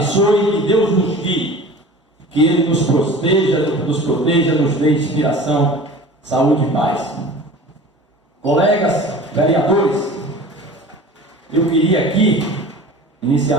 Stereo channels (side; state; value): both; normal; correlation 0.40